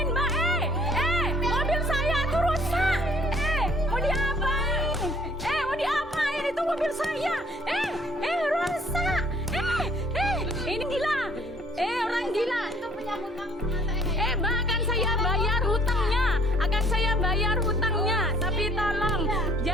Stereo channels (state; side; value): normal; both; correlation 0.59